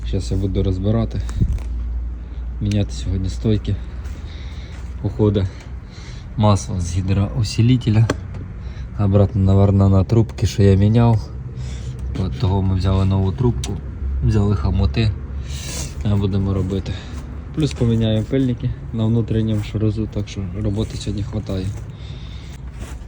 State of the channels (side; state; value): both; identical; correlation 1.00